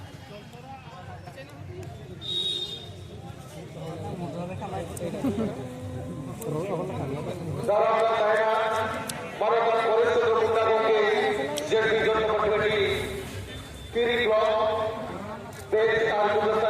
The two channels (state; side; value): identical; both; correlation 1.00